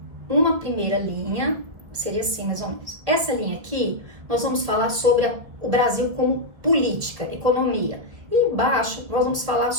Uma primeira linha, seria assim mais ou menos. Essa linha aqui, nós vamos falar sobre o Brasil como política, economia. E embaixo, nós vamos falar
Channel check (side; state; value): left; late; 2.0 ms